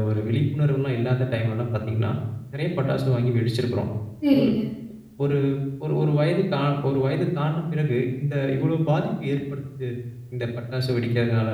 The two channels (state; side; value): identical; both; correlation 1.00